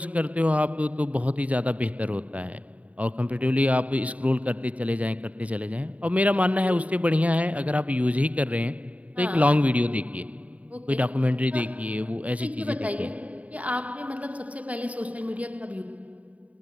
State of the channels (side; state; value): left; late; 0.068 ms